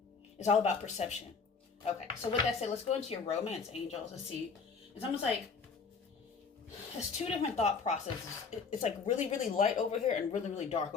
It's all about perception. Okay, so with that said, let's go into your romance angels to see. It's almost like, it's two different thought processes. It's like really, really light over here and really, really dark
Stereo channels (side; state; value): right; quieter; 5.3 dB